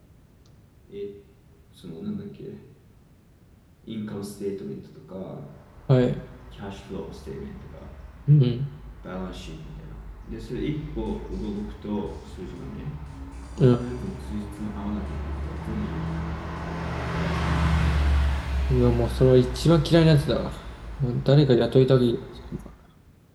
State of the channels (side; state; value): both; identical; correlation 1.00